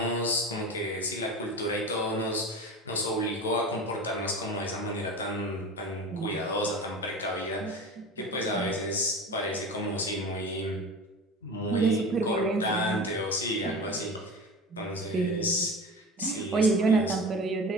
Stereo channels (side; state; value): both; normal; correlation 0.32